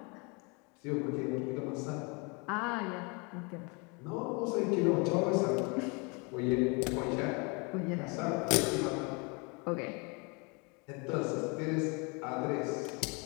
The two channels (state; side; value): quieter; right; 31.2 dB